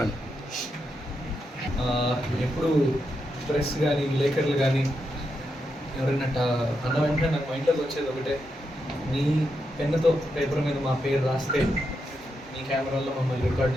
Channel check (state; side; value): normal; both; correlation 0.84